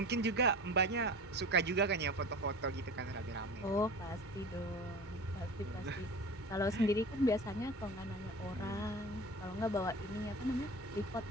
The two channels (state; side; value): normal; both; correlation 0.36